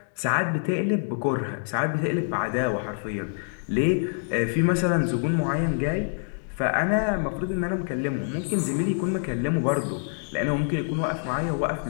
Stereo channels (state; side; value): silent; right; digital silence